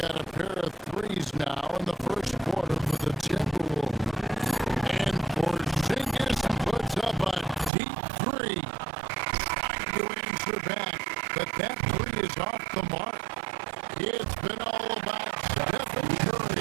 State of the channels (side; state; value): left; drops out; at 7.7 s